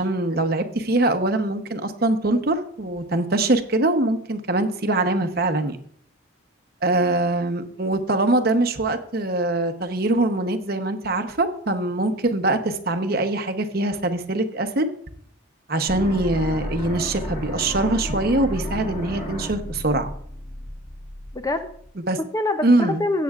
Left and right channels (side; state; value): both; normal; correlation 0.36